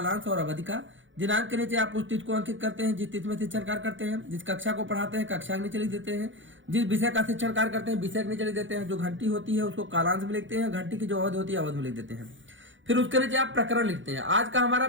और अवधि का। दिनांक के नीचे आप उस तिथि को अंकित करते हैं जिस तिथि में शिक्षण कार्य करते हैं। जिस कक्षा को पढ़ाते हैं कक्षा के नीचे लिख देते हैं। जिस विषय का शिक्षण कार्य करते हैं विषय के नीचे लिख देते हैं। जो घंटी होती है उसको कालांश में लिखते हैं, घंटी की जो अवधि होती है अवधि में लिख देते हैं। फिर उसके नीचे आप प्रकरण लिखते हैं। आज का हमारा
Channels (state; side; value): late; left; 0.56 ms